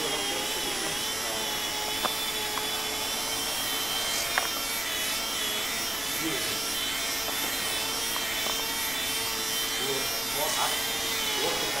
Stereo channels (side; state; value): left; noise; rumble, 18 dB below the sound